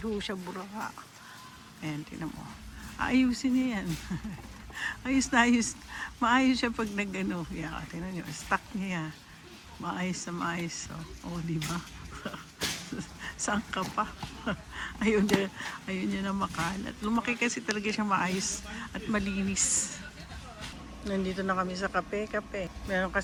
ho siya buraka. Ayan, tingnan mo. Ayusin niya yan. Ayos na ayos. Maayos siya pag nag-ano. Yeah, tingnan niyo, stock niya yan. Maayos na maayos. Oh, di ba? Saan ka pa? Ayun niya na makalat. Lumaki kasi talaga siya maayos at malinis. Nandito na kami sa kape. Meron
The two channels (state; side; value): identical; both; correlation 1.00